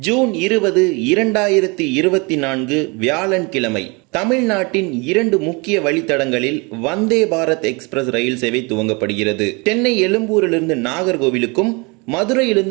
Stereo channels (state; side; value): quieter; left; 28.8 dB